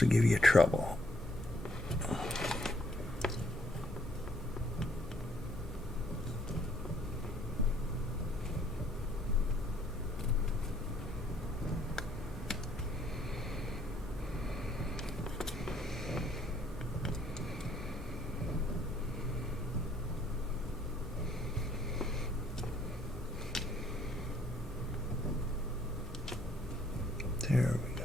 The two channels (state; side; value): normal; both; correlation 0.65